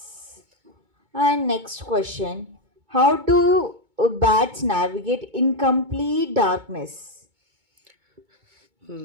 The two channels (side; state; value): left; late; 2.2 ms